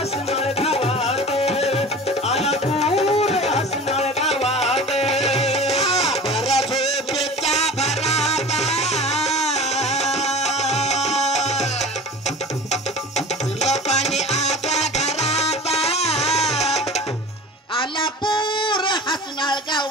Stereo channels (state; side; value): normal; both; correlation 0.37